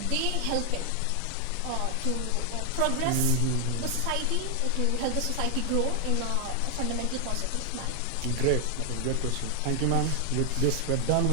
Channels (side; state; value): both; different; correlation 0.00